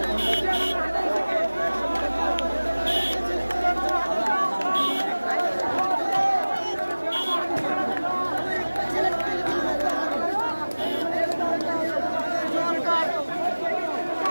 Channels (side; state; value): both; inverted; correlation -1.00